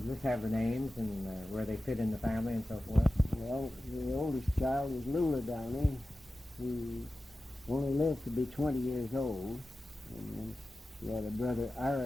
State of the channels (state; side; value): normal; both; correlation 0.94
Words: just have the names and where they fit in the family and so forth. Well, the oldest child was Lula Downey, who only lived to be 20 years old. And then she had a brother,